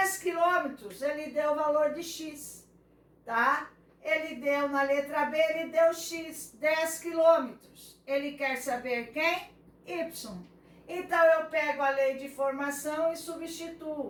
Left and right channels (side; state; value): both; identical; correlation 1.00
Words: quilômetros, ele deu o valor de x, tá? Ele deu na letra B, ele deu x, 10 quilômetros. Ele quer saber quem? Y. Então, eu pego a lei de formação e